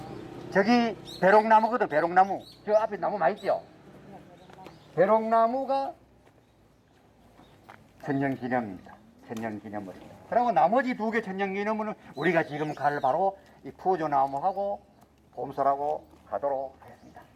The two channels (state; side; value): identical; both; correlation 1.00